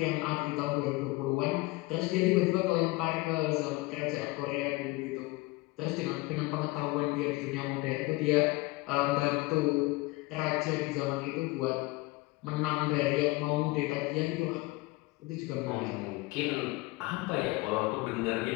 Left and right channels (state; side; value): quieter; right; 22.4 dB